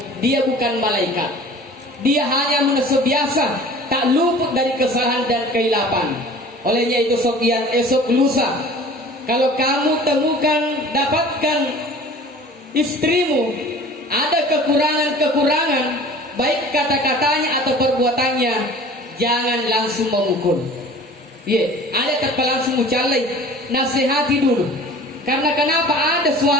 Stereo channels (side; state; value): both; normal; correlation 0.44